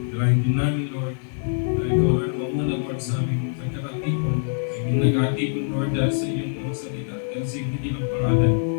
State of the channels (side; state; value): right; silent; digital silence